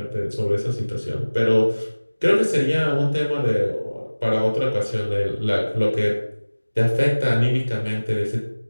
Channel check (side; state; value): both; inverted; correlation -1.00